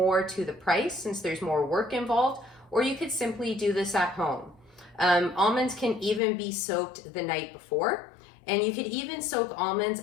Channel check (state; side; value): drops out; right; at 6.2 s